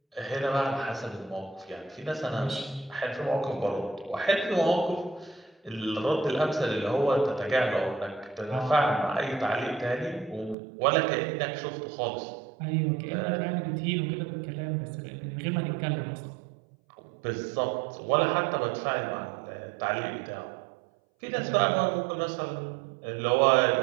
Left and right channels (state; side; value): drops out; left; at 10.6 s